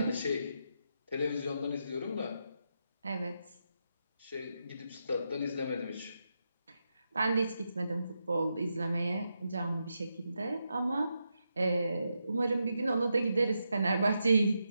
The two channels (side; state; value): both; inverted; correlation -0.85